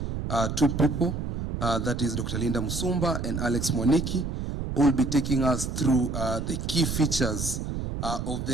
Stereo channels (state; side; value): noise; right; rumble, 4 dB below the sound